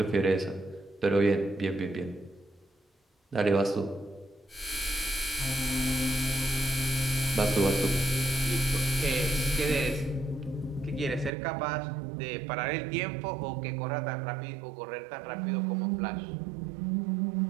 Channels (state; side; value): drops out; left; at 11.3 s